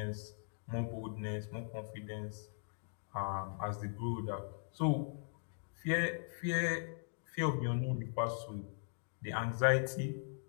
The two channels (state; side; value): silent; right; digital silence